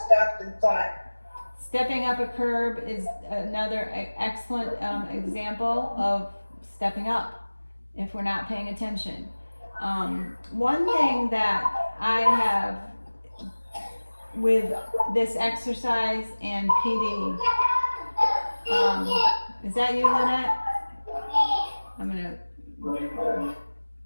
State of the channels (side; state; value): both; inverted; correlation -1.00